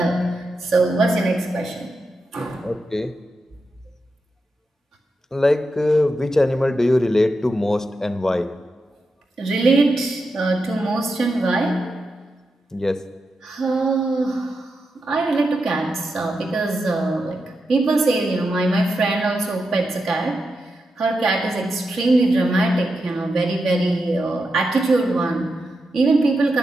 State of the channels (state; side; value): normal; both; correlation 0.87